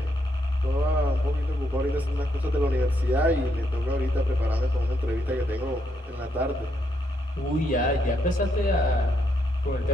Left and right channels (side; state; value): both; normal; correlation 0.77